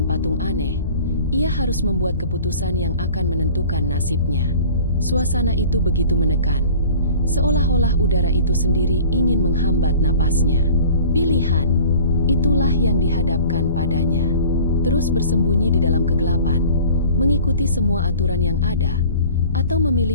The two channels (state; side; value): inverted; both; correlation -0.44